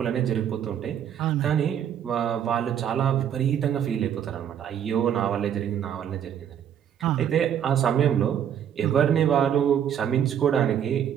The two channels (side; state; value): left; quieter; 9.3 dB